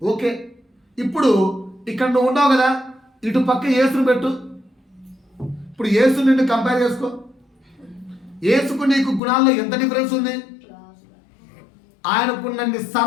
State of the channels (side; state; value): right; drops out; at 9.2 s